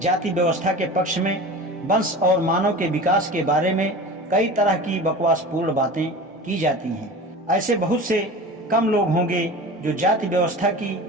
जाति व्यवस्था के पक्ष में वंश और मानव के विकास के बारे में कई तरह की बकवासपूर्ण बातें की जाती हैं। ऐसे बहुत से कम लोग होंगे जो जाति व्यवस्था की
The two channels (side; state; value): both; normal; correlation 0.34